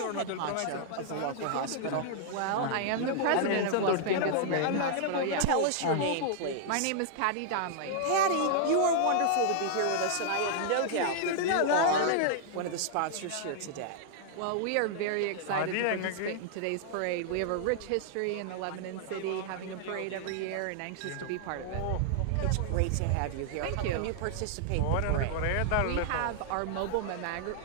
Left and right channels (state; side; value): different; both; correlation -0.01